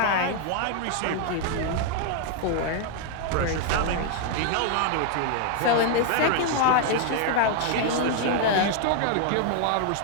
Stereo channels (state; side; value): different; both; correlation 0.00